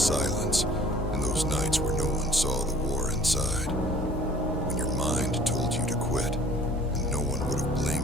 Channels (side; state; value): both; normal; correlation 0.51